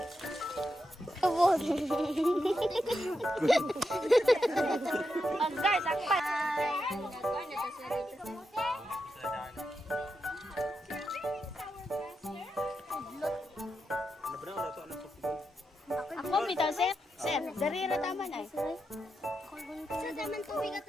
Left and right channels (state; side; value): normal; both; correlation 0.86